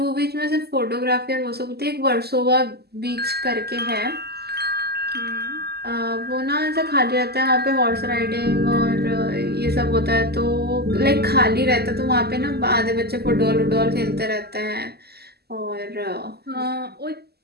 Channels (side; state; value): left; late; 0.46 ms